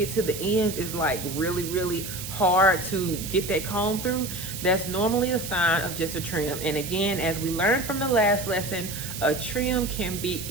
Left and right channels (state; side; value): noise; right; hiss, 8 dB below the sound